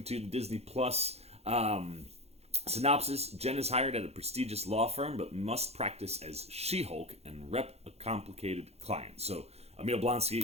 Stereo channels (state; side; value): late; left; 0.30 ms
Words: to the Disney Plus synopsis. Jen is hired at a prestigious law firm, but must practice as She-Hulk and rep a complicated client. So Emil